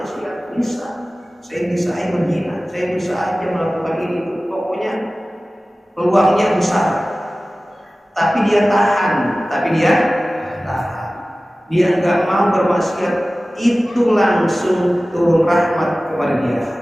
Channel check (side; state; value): both; normal; correlation 0.97